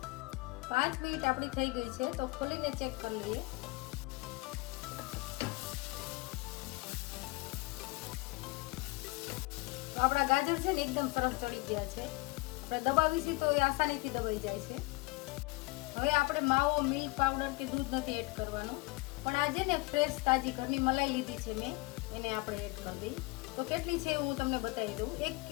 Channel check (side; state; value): right; quieter; 23.7 dB